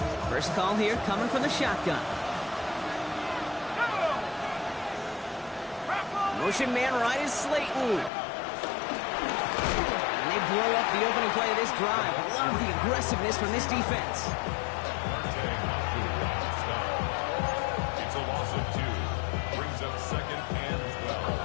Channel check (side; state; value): right; drops out; at 8.1 s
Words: First call here coming from the shotgun. Motion man right is Slayton. And they blow up the opening play of this drive. Love the aggressiveness from this defense. It's a loss of 2. Brings up 2nd and 12